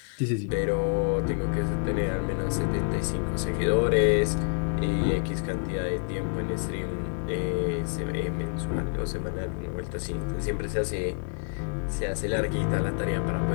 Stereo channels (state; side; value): silent; right; 60 dB below the other